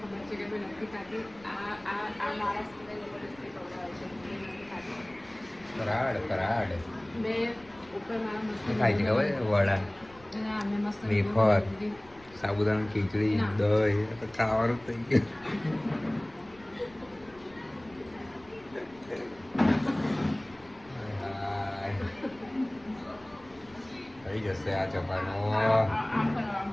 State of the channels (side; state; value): left; noise; rumble, 26 dB below the sound